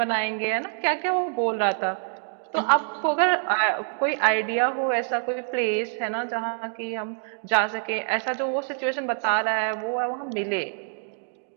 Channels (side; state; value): left; silent; digital silence